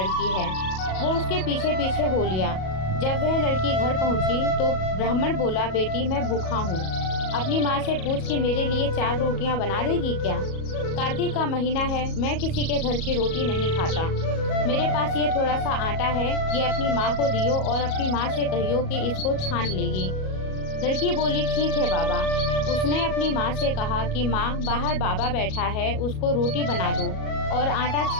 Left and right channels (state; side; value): late; right; 37 ms